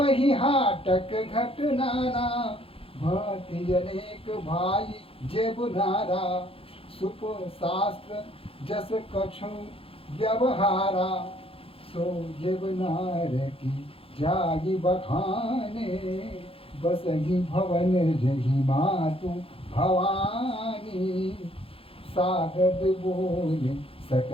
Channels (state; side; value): late; right; 0.27 ms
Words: ही हाटक घट नाना। भांति अनेक भाई जेब नारा, सुप शास्त्र जस कछु व्यवहारा। सो जेब नार की जागी बखाने, बसही भवन जही मातु भवानी। सागद बोले